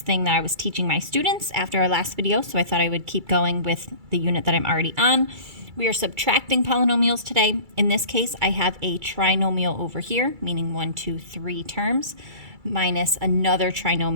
thing that I was teaching my students after our last video, so I thought I would keep going with the unit that I'm already on. We are subtracting polynomials today. In this case, I have a trinomial over here, meaning 1, 2, 3 terms, minus another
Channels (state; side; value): late; left; 2.3 ms